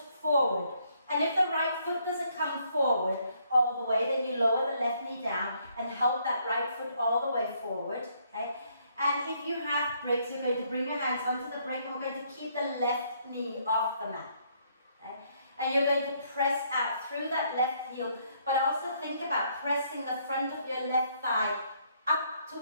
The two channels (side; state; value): both; inverted; correlation -0.70